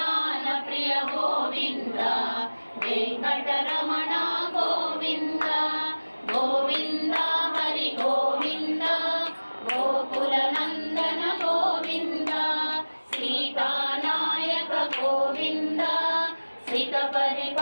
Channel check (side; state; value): both; inverted; correlation -1.00